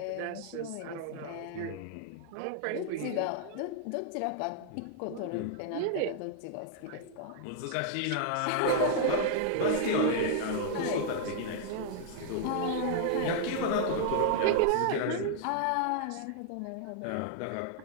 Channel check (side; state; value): both; different; correlation -0.01